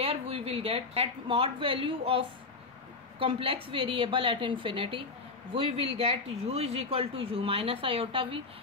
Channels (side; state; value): right; quieter; 4.0 dB